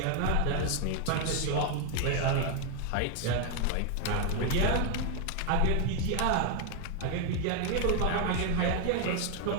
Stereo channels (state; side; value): different; both; correlation 0.01